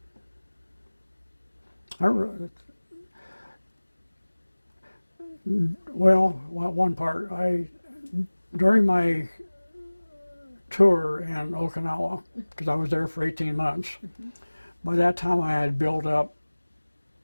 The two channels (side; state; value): both; inverted; correlation -1.00